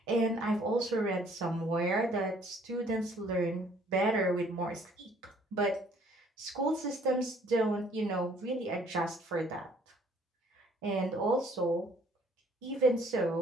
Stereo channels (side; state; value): both; normal; correlation 0.60